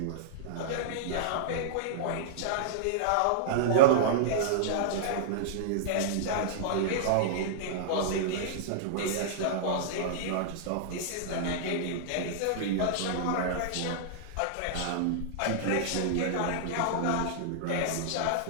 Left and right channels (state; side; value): different; both; correlation -0.02